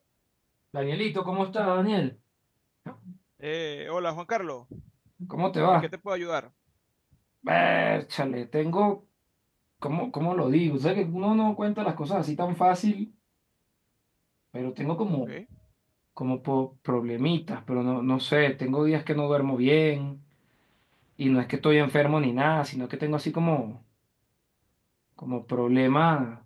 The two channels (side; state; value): both; identical; correlation 1.00